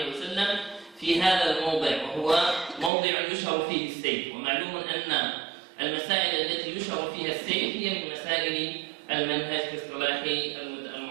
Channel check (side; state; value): left; drops out; at 2.9 s